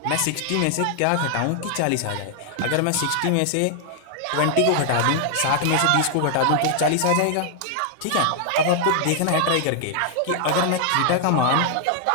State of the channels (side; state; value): both; different; correlation 0.00